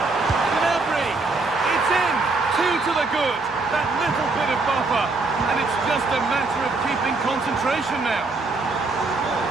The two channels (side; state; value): left; quieter; 3.6 dB